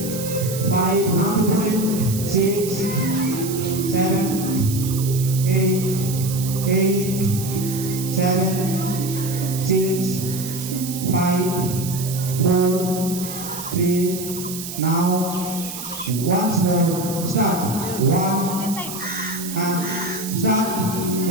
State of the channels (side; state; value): right; noise; hiss, 9 dB below the sound